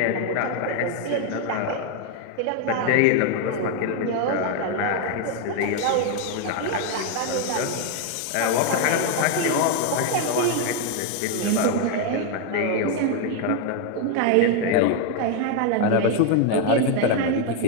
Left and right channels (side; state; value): both; different; correlation 0.01